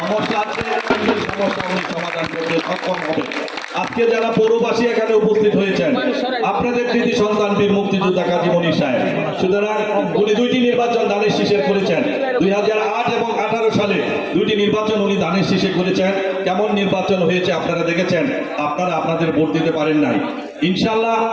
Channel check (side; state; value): both; identical; correlation 1.00